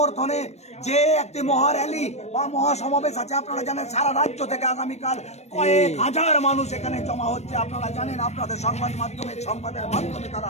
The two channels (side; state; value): right; late; 0.32 ms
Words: যে একটি মহা র্যালি বা মহাসমাবেশ আছে, আপনারা জানেন সারা রাজ্য থেকে আগামীকাল কয়েক হাজার মানুষ এখানে জমা হচ্ছে। আপনারা জানেন, আপনাদের সংবাদের মাধ্যমে তারা